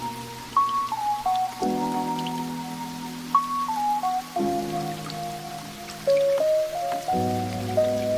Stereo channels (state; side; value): identical; both; correlation 1.00